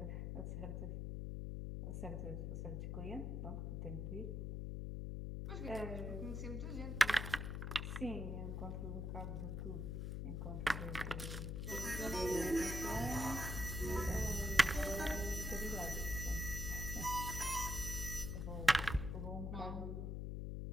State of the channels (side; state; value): left; noise; hum, 3 dB below the sound